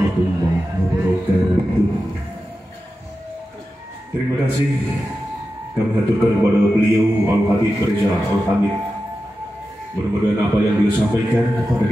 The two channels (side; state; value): both; normal; correlation 0.92